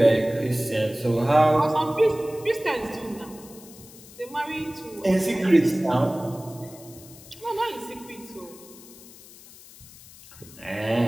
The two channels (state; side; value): noise; left; hiss, 20 dB below the sound